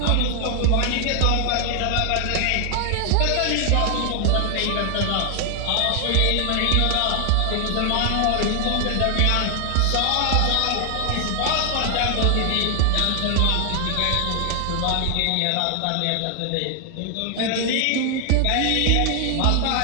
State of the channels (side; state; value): both; different; correlation 0.00